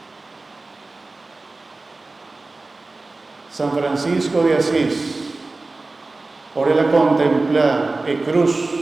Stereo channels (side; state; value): left; quieter; 3.4 dB